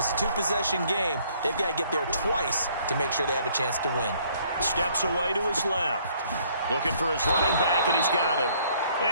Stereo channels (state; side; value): inverted; both; correlation -0.63